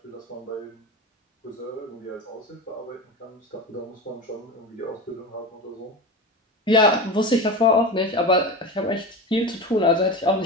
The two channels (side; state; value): both; normal; correlation 0.26